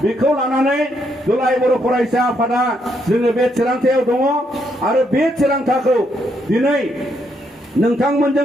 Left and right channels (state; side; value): normal; both; correlation 0.75